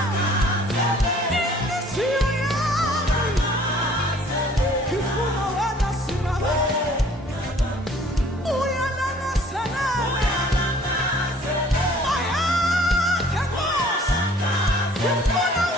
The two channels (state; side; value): normal; both; correlation 0.54